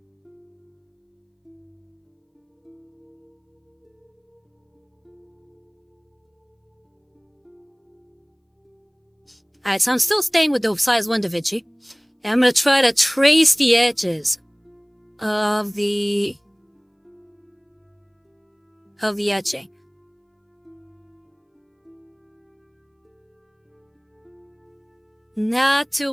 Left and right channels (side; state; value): both; identical; correlation 1.00